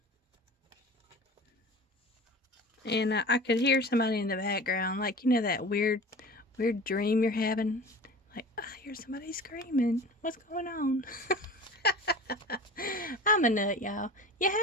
And I could hear somebody in the background, like, that weird dream you're having. Like, I hear somebody screaming. What's going on? I'm a nut, y'all. You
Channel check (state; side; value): normal; both; correlation 0.37